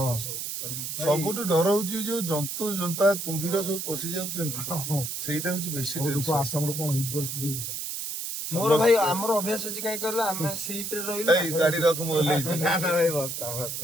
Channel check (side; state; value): right; noise; hiss, 5 dB below the sound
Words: ସବୁଠୁ ଡର ହଉଛି ଯୋଉ ଜନ୍ତୁ ଜନ୍ତା କୁମ୍ଭୀର ସବୁ ପଶି ଯାଉଛନ୍ତି ସେଇଟା ହଉଛି ବେଶୀ ଟେନସନ ଆସାମର କଣ ହେଇଛି ପରିସ୍ଥିତି ମୋର ଭାଇ ଆମର ଅଭ୍ୟାସ ଅଛି କାହିଁ କହିଲ ଆମେ ସିପରେ ରହିଲୁ ଏଇ ଗାଡି ରଖ ମୁଁ ଓହ୍ଲେଇଛି ନା ନା ଭାଇ ବସ୍ତା